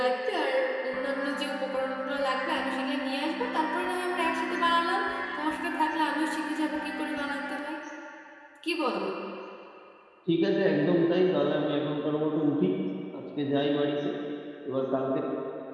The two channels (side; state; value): both; identical; correlation 1.00